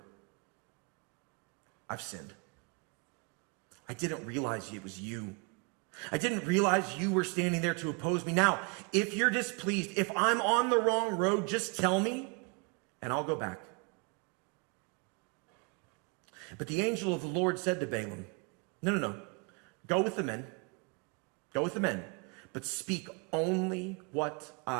I've sinned. I didn't realize it was you. I didn't realize you were standing there to oppose me. Now, if you're displeased, if I'm on the wrong road, just tell me, and I'll go back. But the angel of the Lord said to Balaam, no. Go with the men. Go with the men. But speak only what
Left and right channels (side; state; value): left; quieter; 31.6 dB